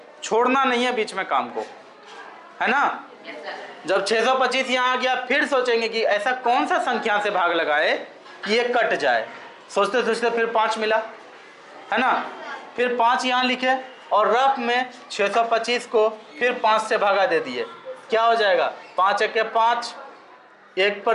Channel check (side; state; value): both; identical; correlation 1.00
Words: छोड़ना नहीं है बीच में काम को, है ना। जब 625 यहाँ आ गया, फिर सोचेंगे कि ऐसा कौन सा संख्या से भाग लगाए कि ये कट जाए। सोचते सोचते फिर 5 मिला, है ना। फिर 5 यहाँ लिखे और रफ में 625 को फिर 5 से भागा दे दिए, क्या हो जाएगा 5 1 के 5, 1